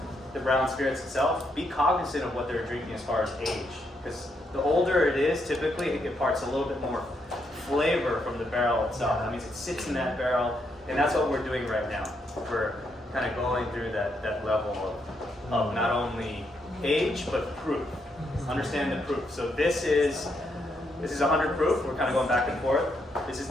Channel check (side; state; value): both; normal; correlation 0.78